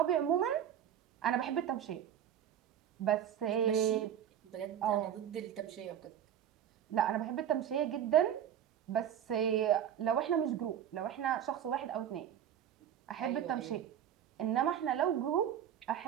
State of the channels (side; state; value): left; quieter; 9.9 dB